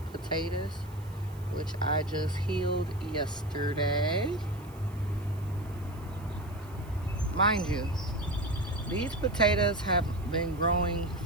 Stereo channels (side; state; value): right; noise; hiss, 25 dB below the sound